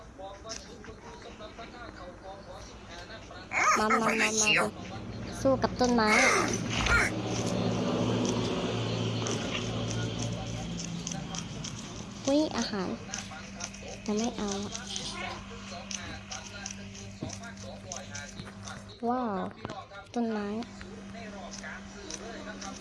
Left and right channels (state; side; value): identical; both; correlation 1.00